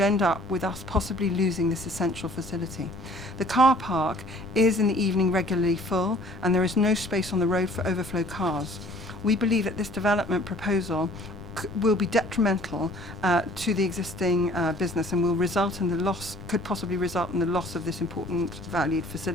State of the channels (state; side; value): noise; left; rumble, 14 dB below the sound